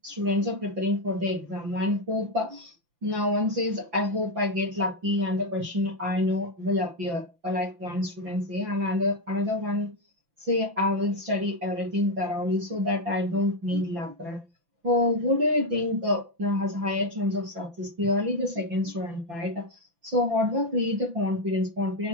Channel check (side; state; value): left; late; 5.9 ms